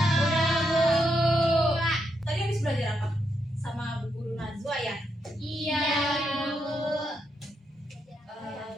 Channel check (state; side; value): normal; both; correlation 0.81